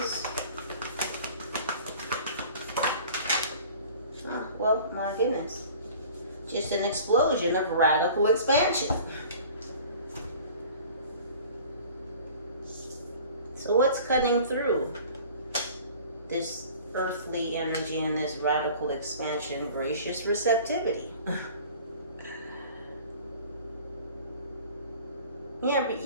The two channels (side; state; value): both; inverted; correlation -0.46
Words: Ah, well, my goodness. Just an explosion of radical expansion. So what's cutting through this earthly energy and this radical expansion? Gracious receptivity. Yeah, but